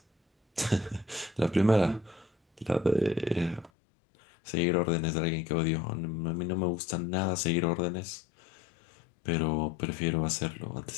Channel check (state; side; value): drops out; right; at 3.7 s